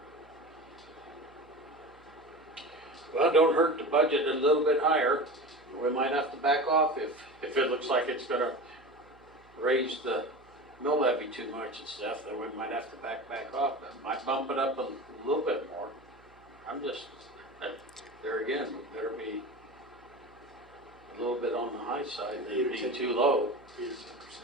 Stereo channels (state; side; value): noise; right; hum, 28 dB below the sound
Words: Well, don't hurt to budget a little bit higher. We might have to back off if it looks like it's gonna raise the mill levy too much and stuff, then we might have to back off. That might bump it up a little bit more. I'm just, there again, we better be a little bit on the high side, maybe be too low. 8 or 10%, I